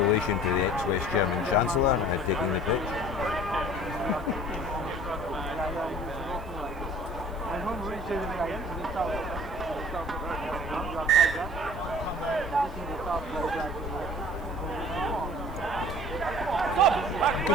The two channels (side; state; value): left; noise; hiss, 28 dB below the sound